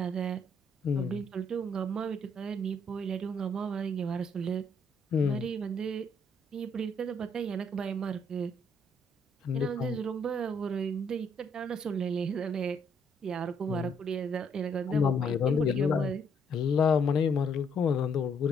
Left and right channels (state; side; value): normal; both; correlation 0.69